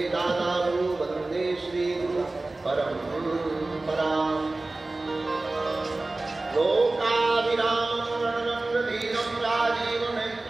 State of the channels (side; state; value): left; quieter; 3.0 dB